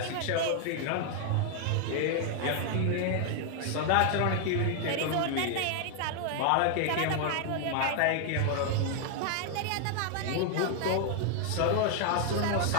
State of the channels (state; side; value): different; both; correlation 0.00